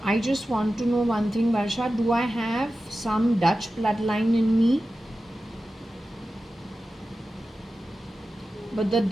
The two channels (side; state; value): both; normal; correlation 0.93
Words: I just want to know one thing, Varsha. Do I have some Dutch bloodline in me? But the